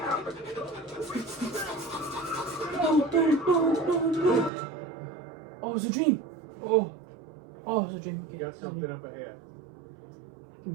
Oh, it was a dream. Oh, it was a dream. You got something up ahead. Give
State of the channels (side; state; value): left; drops out; at 4.5 s